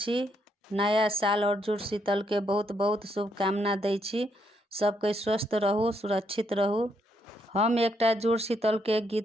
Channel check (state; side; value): normal; both; correlation 0.75